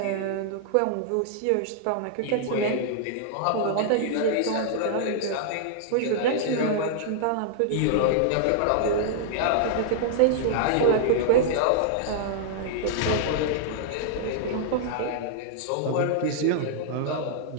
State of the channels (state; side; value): different; both; correlation -0.01